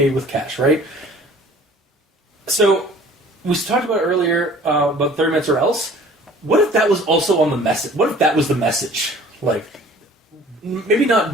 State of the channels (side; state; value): both; normal; correlation 0.49